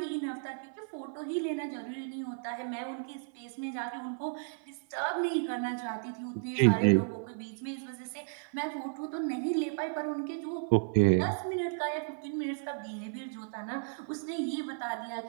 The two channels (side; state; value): left; silent; 55 dB below the other